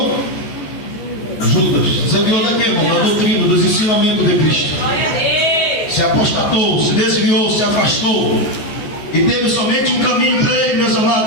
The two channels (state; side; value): late; right; 14 ms